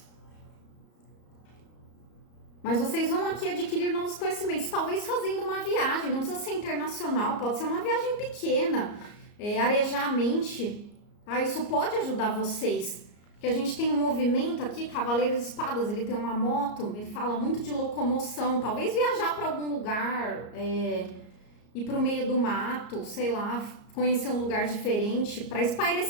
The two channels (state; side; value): late; right; 34 ms